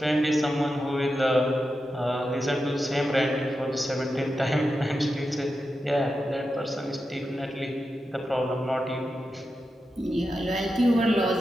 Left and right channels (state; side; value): normal; both; correlation 0.89